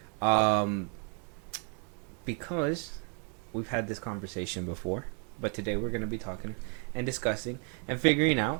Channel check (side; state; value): left; quieter; 39.8 dB